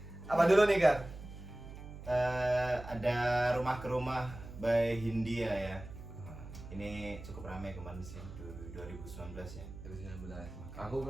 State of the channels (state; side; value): noise; right; hum, 13 dB below the sound